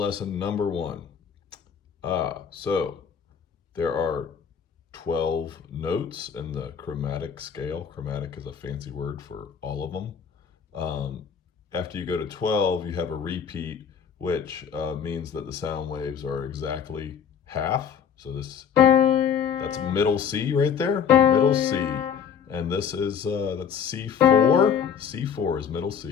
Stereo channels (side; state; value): right; quieter; 7.5 dB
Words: number 1. So there are 12 notes in the chromatic scale. Chromatic is a fancy word for all of them. After you go to 12, you have a repeat, which means that the sound waves are exactly half. So that's middle C right there, middle C. And this is, that's C4. C4 is middle